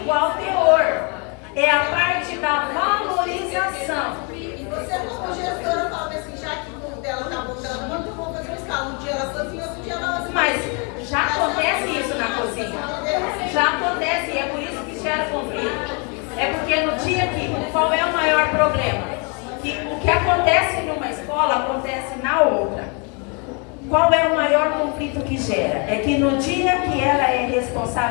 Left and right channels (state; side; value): quieter; right; 34.5 dB